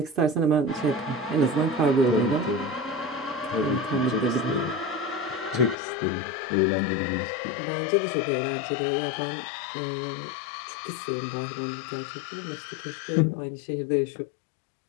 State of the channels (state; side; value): drops out; right; at 5.8 s